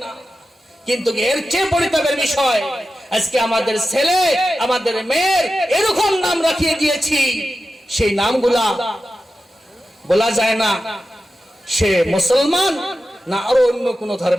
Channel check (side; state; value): both; normal; correlation 0.92